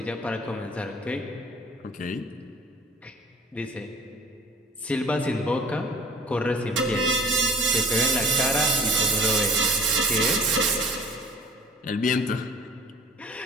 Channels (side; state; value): both; normal; correlation 0.47